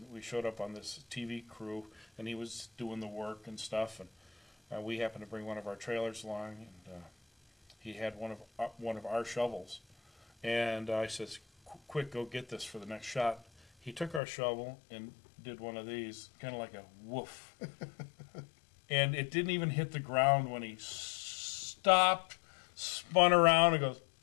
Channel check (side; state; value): right; drops out; at 14.2 s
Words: we showed up on this TV crew, and he was doing the work and stuff, and we happened to bring one of our trailers along, and he had one of our shovels, and I says, "Quick, go get this for the next shot." He took our shovel and did one of these, kind of like a woof. And it didn't even hit the ground when he stopped, spun around, and goes,